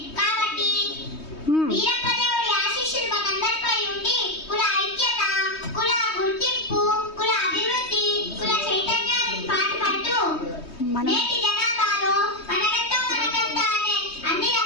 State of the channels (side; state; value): right; late; 3.2 ms